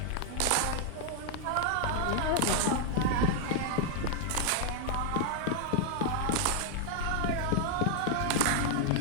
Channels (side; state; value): both; different; correlation 0.00